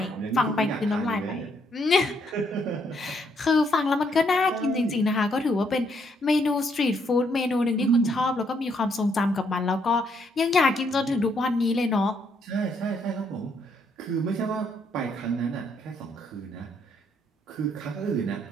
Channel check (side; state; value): both; normal; correlation 0.72